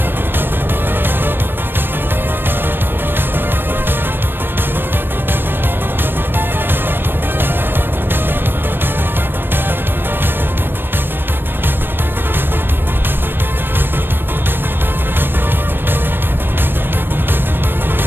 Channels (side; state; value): left; late; 0.097 ms